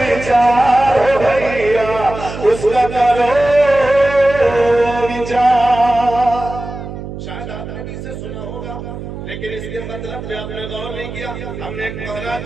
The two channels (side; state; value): right; noise; hum, 10 dB below the sound